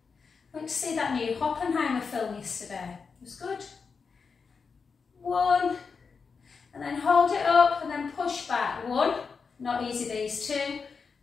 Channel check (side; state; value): right; quieter; 5.3 dB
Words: went to see that new Oppenheimer film yesterday, it was good, 1, and then hold it up and then push back, 1, not easy these, 2,